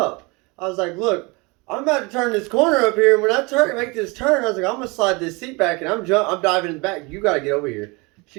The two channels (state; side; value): quieter; left; 27.0 dB